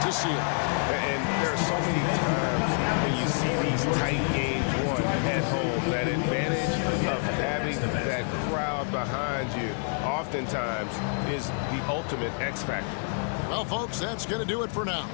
seal. And there are so many times when you see these tight games won at home, that advantage of having that crowd behind you oftentimes is the ultimate X factor. Well, folks, that's going to do it for now.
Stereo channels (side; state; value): right; silent; 56 dB below the other